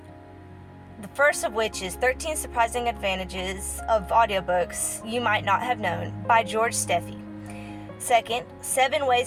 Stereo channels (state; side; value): identical; both; correlation 1.00